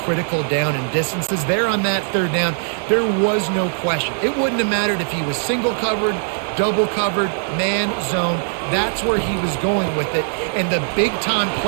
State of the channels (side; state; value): left; silent; digital silence